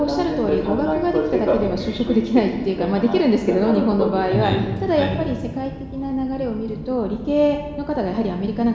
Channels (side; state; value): both; identical; correlation 1.00